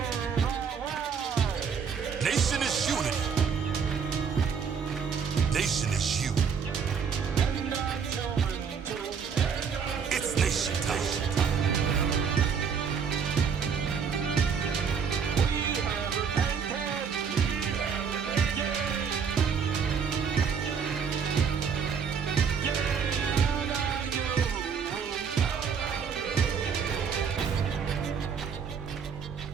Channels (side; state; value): left; quieter; 6.5 dB